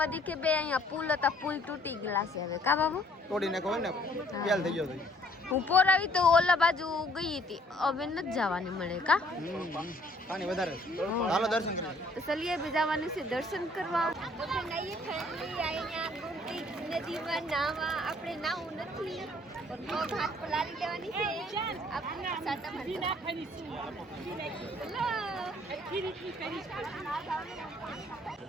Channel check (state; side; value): normal; both; correlation 0.61